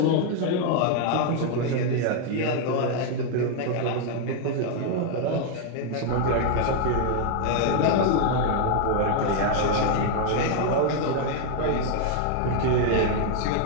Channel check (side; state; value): both; different; correlation 0.00